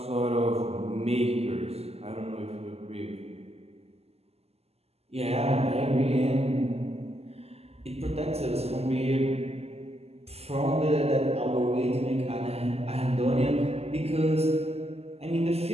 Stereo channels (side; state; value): left; late; 0.29 ms